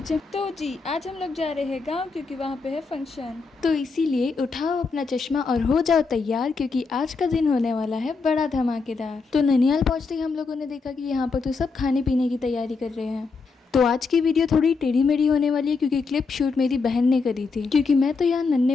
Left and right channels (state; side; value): quieter; right; 4.5 dB